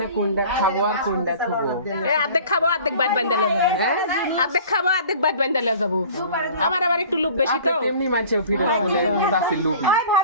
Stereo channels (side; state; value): both; inverted; correlation -0.45